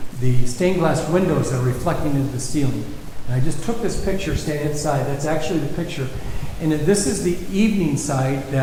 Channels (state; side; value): identical; both; correlation 1.00